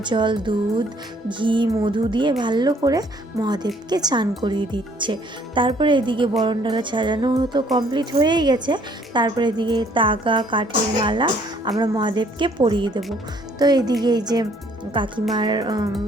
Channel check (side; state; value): both; normal; correlation 0.62